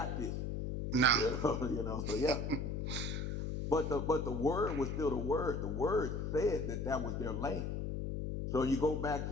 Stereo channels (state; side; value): noise; left; hum, 2 dB below the sound